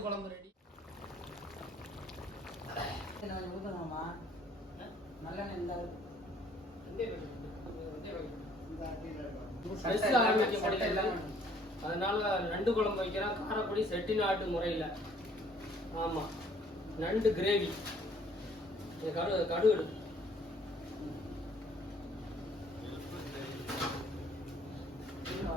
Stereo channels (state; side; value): normal; both; correlation 0.60